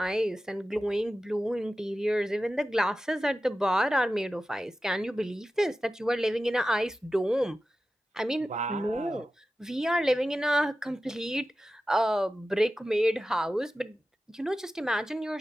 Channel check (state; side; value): normal; both; correlation 0.94